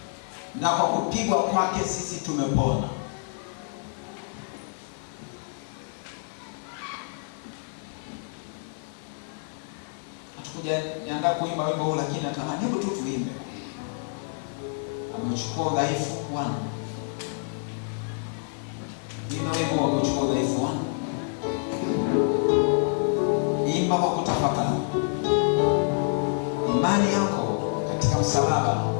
na kwa kupigwa kwake sisi tumepona. Hatukuja niandaa kuimba wimbo huu, lakini natamani hebu tu tuimbe. Amechukua udhaifu wangu. Imba wimbo wa kuchukua udhaifu wangu. Imba kwa kutafakari. Imani yako katika msalaba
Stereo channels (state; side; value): silent; right; 59 dB below the other